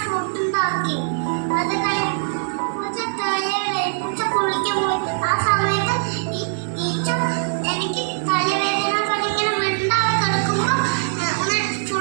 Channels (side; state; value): left; silent; digital silence